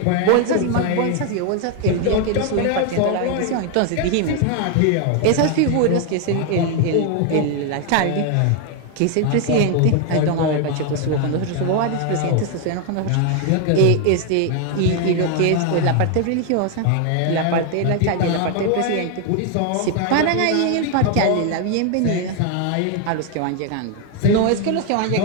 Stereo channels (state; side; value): different; both; correlation 0.01